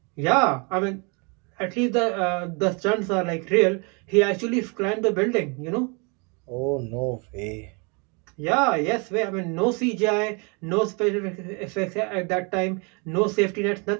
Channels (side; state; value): left; quieter; 32.9 dB